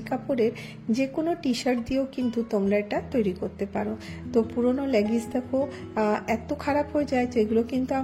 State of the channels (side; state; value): both; identical; correlation 1.00